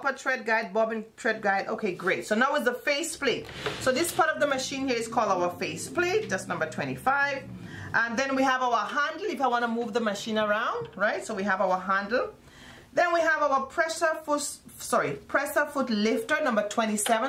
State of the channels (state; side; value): identical; both; correlation 1.00